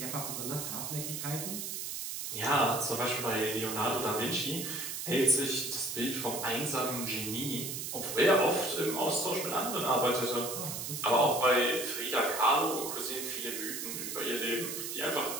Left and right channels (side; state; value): right; noise; hiss, 5 dB below the sound